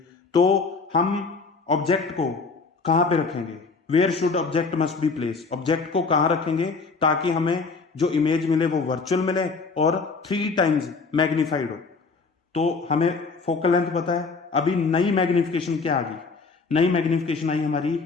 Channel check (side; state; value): right; quieter; 4.4 dB